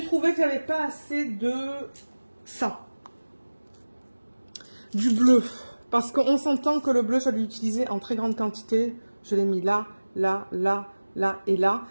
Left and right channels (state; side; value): inverted; both; correlation -1.00